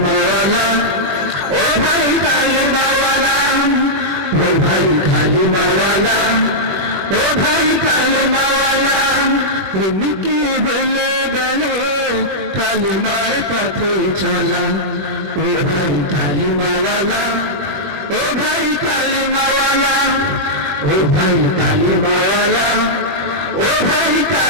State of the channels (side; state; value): left; late; 20 ms